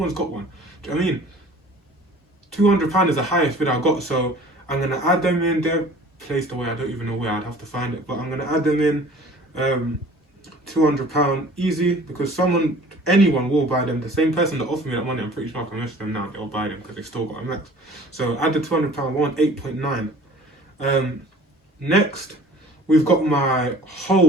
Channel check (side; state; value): both; normal; correlation 0.48